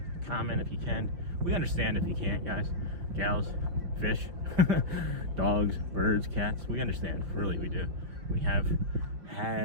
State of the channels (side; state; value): left; late; 5.6 ms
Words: comment if you can. We understand if you can't, guys, gals, fish, dogs, birds, cats. We understand, really, we do. We have